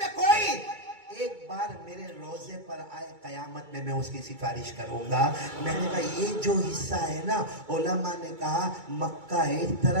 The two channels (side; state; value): left; late; 2.3 ms